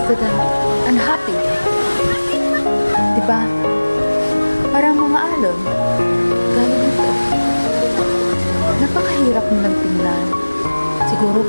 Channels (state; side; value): inverted; both; correlation -1.00